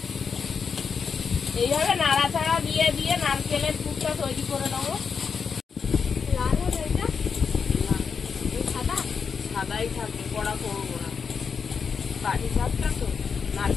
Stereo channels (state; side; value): quieter; right; 6.0 dB